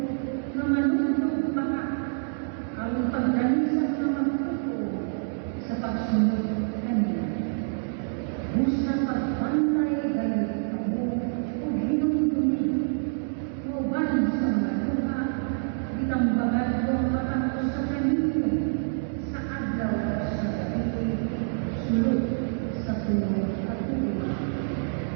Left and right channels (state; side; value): silent; left; digital silence